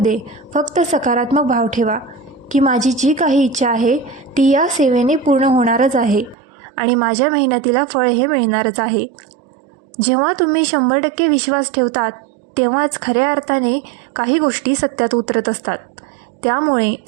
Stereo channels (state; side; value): drops out; left; at 6.4 s